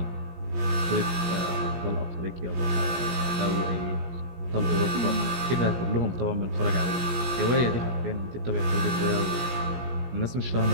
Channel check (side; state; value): left; late; 17 ms